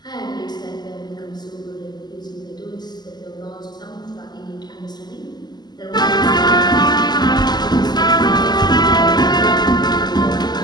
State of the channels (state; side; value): late; right; 0.20 ms